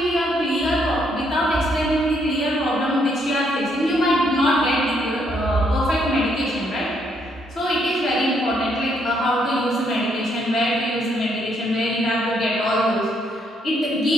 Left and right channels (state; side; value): normal; both; correlation 0.72